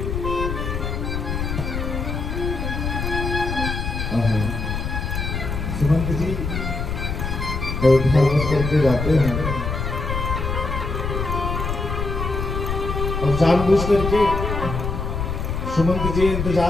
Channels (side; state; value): left; noise; rumble, 3 dB below the sound